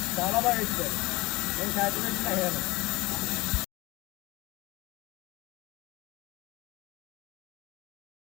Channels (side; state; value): right; quieter; 21.7 dB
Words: చాలా బాగా ఇచ్చారు. నేను సాటిస్ఫాక్షన్ అయ్యాను.